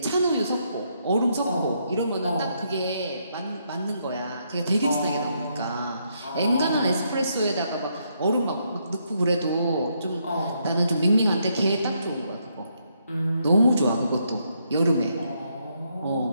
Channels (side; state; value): both; inverted; correlation -0.76